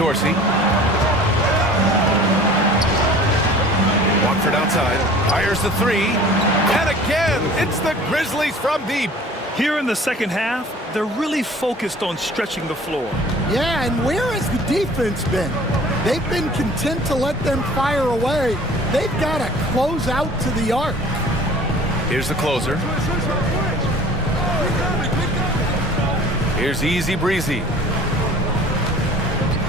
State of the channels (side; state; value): both; normal; correlation 0.47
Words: Watford outside. Fires the 3. And again, it's the Grizzlies from deep. Here in the second half, they're really focused on stretching the floor. Yeah, and where has the defense been? They've been content to let them fire away. They've got to close out to the arc. Here's the closer. Here's Easy Breezy.